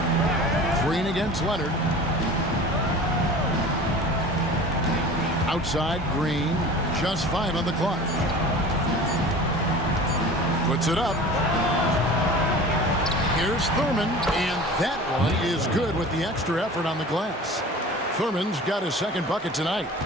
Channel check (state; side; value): normal; both; correlation 0.39